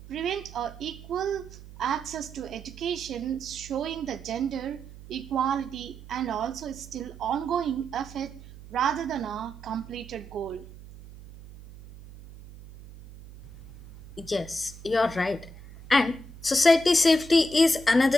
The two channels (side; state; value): right; noise; hum, 17 dB below the sound